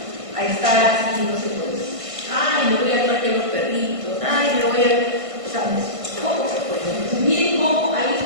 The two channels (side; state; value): left; late; 1.5 ms